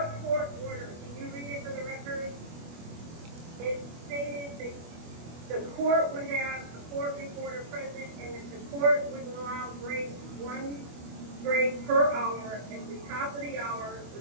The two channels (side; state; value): left; late; 25 ms